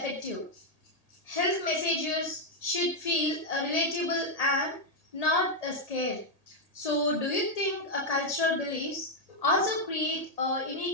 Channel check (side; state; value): right; late; 1.8 ms